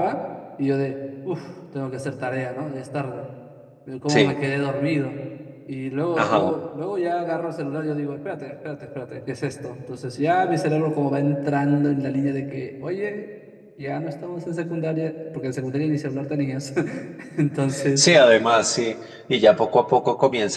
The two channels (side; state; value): both; identical; correlation 1.00